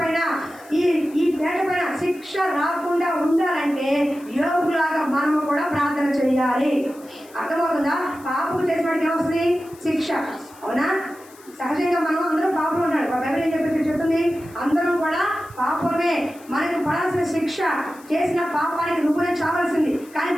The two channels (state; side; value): noise; left; hiss, 24 dB below the sound